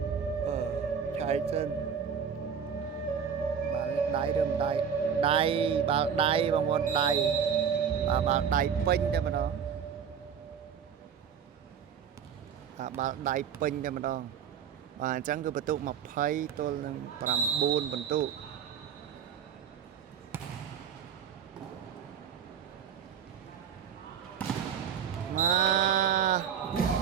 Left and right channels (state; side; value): quieter; left; 7.6 dB